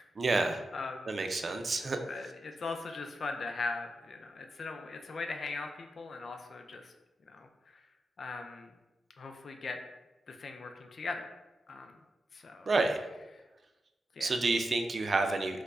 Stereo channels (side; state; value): both; normal; correlation 0.89